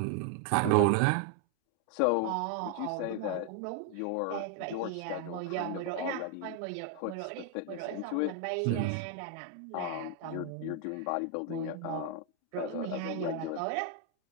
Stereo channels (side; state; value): both; different; correlation 0.00